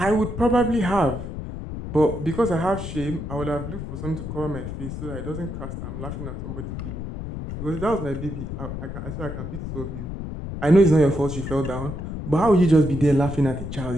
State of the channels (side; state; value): left; noise; rumble, 7 dB below the sound